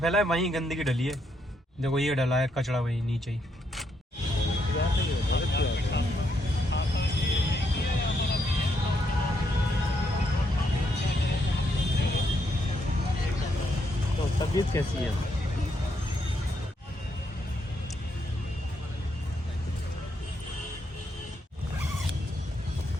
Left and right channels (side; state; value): both; normal; correlation 0.77